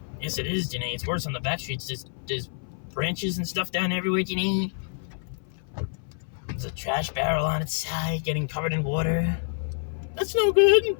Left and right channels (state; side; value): silent; right; 57 dB below the other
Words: Yes, it is, Janae. It's worse on the back streets. There's branches and stuff down everywhere, Janae. There's a trash barrel on its side getting covered in water. That's no good.